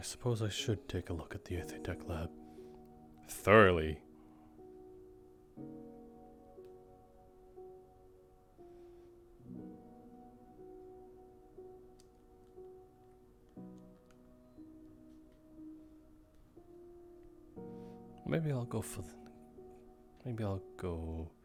suppose I should take a look at the Tech lab. Thoroughly. Maybe I'll go for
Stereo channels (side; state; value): both; identical; correlation 1.00